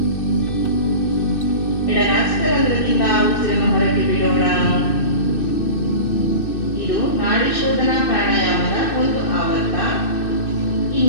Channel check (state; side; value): late; right; 2.6 ms